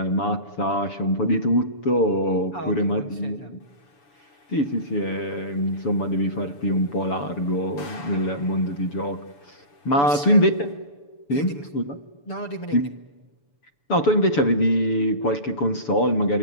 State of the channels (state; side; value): late; right; 7.0 ms